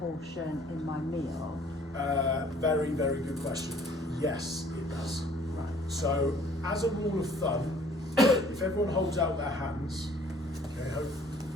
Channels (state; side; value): normal; both; correlation 0.56